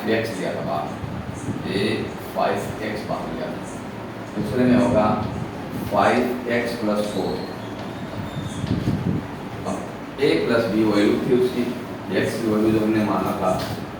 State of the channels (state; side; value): identical; both; correlation 1.00